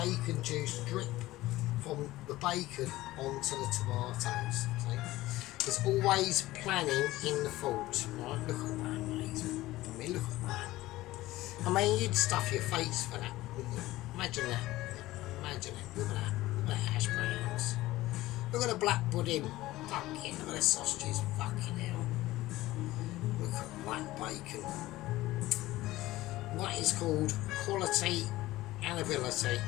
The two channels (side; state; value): right; quieter; 17.3 dB